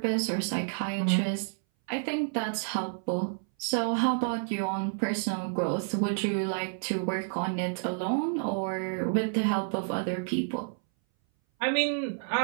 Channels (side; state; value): left; silent; 58 dB below the other